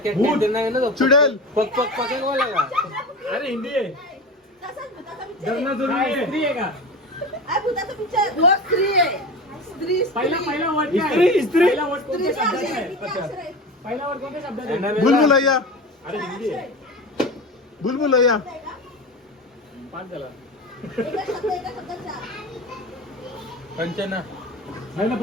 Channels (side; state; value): both; normal; correlation 0.28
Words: भूत. ते नाही ना तो. चुडेल. पक पक पक बोला का? अरे हिंदी आहे. तसाच भुताचा picture आहे. धरणा जरूर आहे. स्त्री आहे का? अरे भुताचा picture. हो, स्त्री आहे. स्त्री पहिला स्त्री. पहिला वर्ड काय? इस्त्री, इस्त्री. पहिला वर्ड कोणत्या स्त्रीचे शब्दाचा अक्षर आहे? किती अक्षर आहेत? पहिला वर्ड कोणत्या शब्दाचा यांना आहे? वेगळा. बुलबुलैया अरे हिंदी आहे. बुलबुलैया. आहे का? पाच झाला. एका शब्दाचा. कंचना. नाही ना,